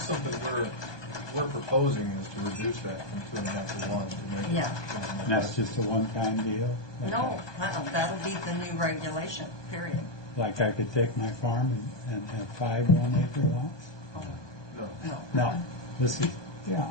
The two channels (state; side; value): late; right; 1.2 ms